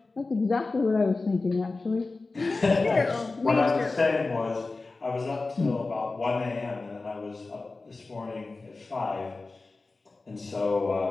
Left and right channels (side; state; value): right; quieter; 3.6 dB